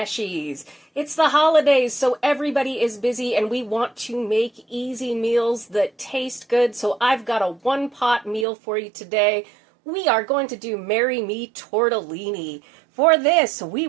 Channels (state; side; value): drops out; left; at 8.5 s